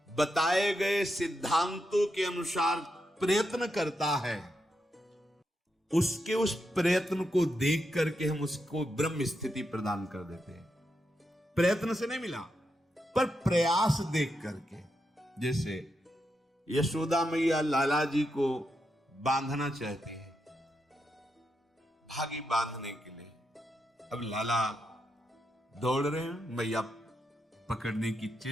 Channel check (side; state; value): both; normal; correlation 0.84